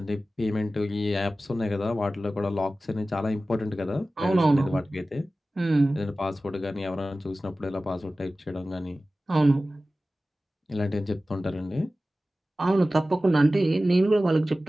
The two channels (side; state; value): both; normal; correlation 0.96